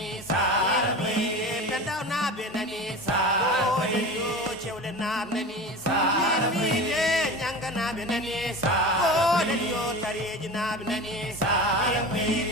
sarabe pendaw nabe nani sarabe o lelio chewle nab nani sarabe nyanga nabe nani sarabe o lelio tareji nabe nani sarabe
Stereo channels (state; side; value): normal; both; correlation 0.31